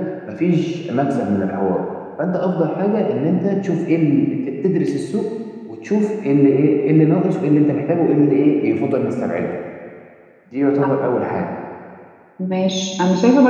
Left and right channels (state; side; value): identical; both; correlation 1.00